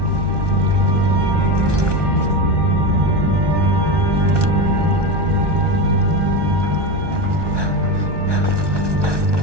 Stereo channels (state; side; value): late; left; 1.2 ms